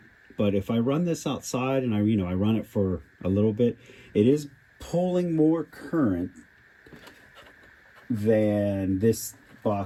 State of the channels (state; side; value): identical; both; correlation 1.00